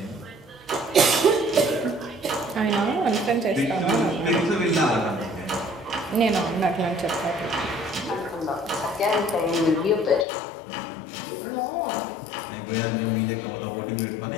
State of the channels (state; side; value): drops out; right; at 10.2 s